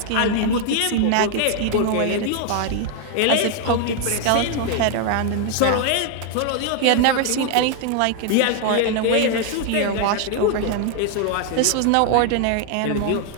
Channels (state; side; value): different; both; correlation 0.00